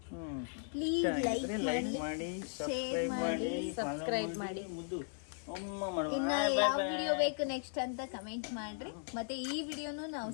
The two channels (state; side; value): silent; right; digital silence